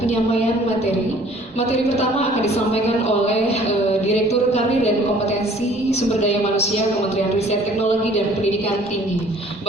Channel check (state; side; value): normal; both; correlation 0.54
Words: penyampaian materi. Materi pertama akan disampaikan oleh Direktur Karir dan Kompetensi Sumber Daya Manusia Kementerian Riset Teknologi dan Pendidikan Tinggi,